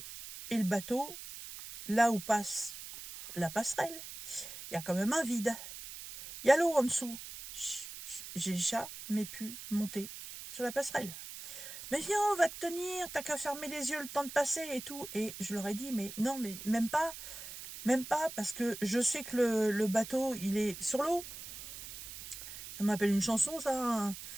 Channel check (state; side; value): noise; right; hiss, 11 dB below the sound